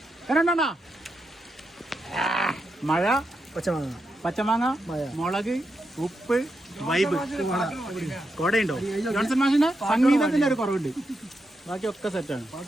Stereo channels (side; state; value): both; normal; correlation 0.85